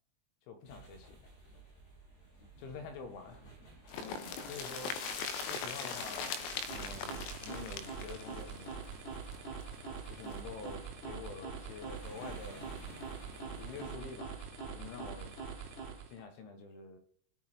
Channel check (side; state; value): right; late; 21 ms